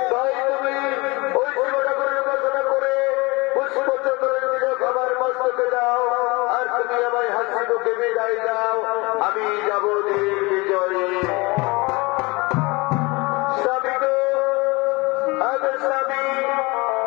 তাই তুমি ওই শিবটা করে উপাসনা করে পুষ্পচন্দ্রের তিলক আমার মস্তকে দাও আর তুমি আমায় হাসি মুখে বিদায় দাও। আমি যাব ঠিক বিজয়ে। স্বামী গো, আগের স্বামী,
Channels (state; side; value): quieter; right; 25.1 dB